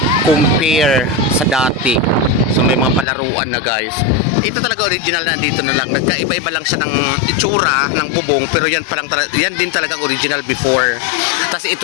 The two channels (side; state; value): right; drops out; at 3.1 s